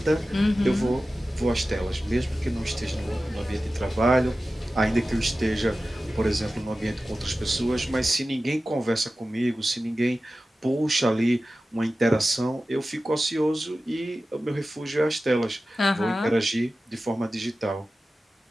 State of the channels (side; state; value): both; normal; correlation 0.95